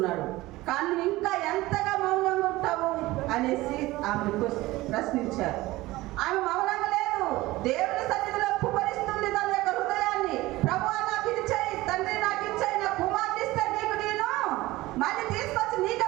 కానీ ఇంకా ఎంతగా మౌనంగా ఉంటావు అనేసి ఆమె ప్రశ్నించారు. ఆమె మౌనంగా లేదు, దేవుని సన్నిధిలో కుమరిస్తుంది తన యొక్క హృదయాన్ని. ప్రభువా నాకు ఇది చేయి, తండ్రి నాకు ఇచ్చాయి, నా కుమార్తె ఇస్తే నీకు నేను మళ్ళీ తీసుకొచ్చి నీకే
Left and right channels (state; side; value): quieter; left; 18.7 dB